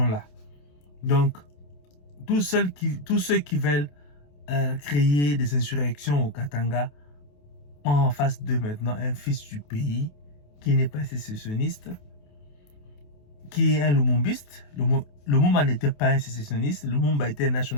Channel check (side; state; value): right; late; 28 ms